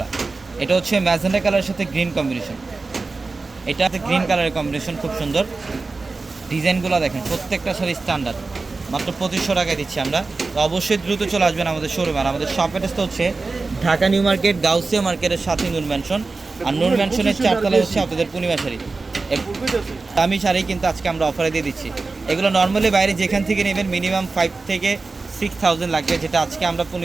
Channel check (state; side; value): quieter; left; 3.8 dB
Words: এটা হচ্ছে ম্যাজেন্ডা কালারের সাথে গ্রিন কম্বিনেশন। এটা গ্রিন কালারের কম্বিনেশন, খুব সুন্দর। ডিজাইনগুলো দেখেন, প্রত্যেকটা শাড়ি স্ট্যান্ডার্ড। মাত্র 2,500 টাকায় দিচ্ছি আমরা। তো অবশ্যই দ্রুত চলে আসবেন আমাদের শোরুমে। আর আমাদের শপ অ্যাড্রেসটা হচ্ছে ঢাকা নিউ মার্কেট, গাউসিয়া মার্কেটের সাথে নূর ম্যানশন। আর নূর ম্যানশনের 4 তলা হচ্ছে আপনাদের পূর্ণিমা শাড়ি। দামি শাড়ি কিন্তু আজকে আমরা অফারে দিয়ে দিচ্ছি। এগুলো নর্মালি বাইরে যেখান থেকে নেবেন মিনিমাম 5 থেকে 6,000 লাগবে, যেটা আজকে আমরা